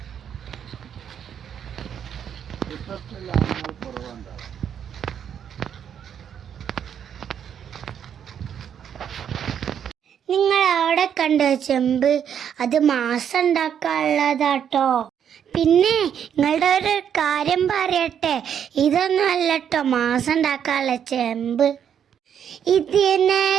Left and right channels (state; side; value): quieter; left; 8.6 dB